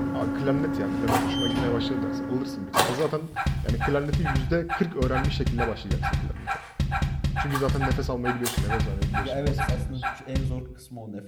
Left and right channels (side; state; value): both; identical; correlation 1.00